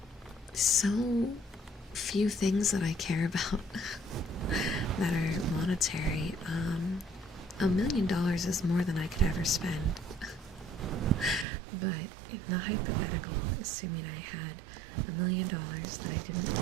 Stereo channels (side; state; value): left; drops out; at 11.5 s